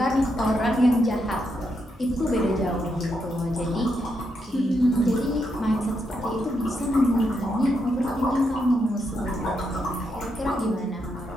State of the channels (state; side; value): normal; both; correlation 0.81